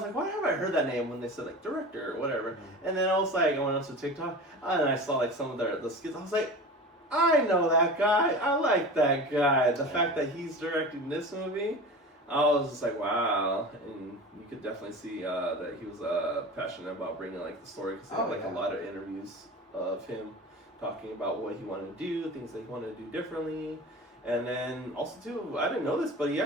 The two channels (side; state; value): both; normal; correlation 0.33